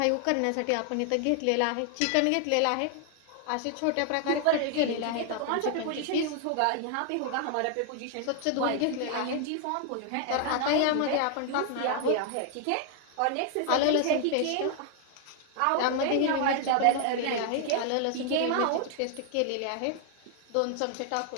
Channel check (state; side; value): different; both; correlation 0.00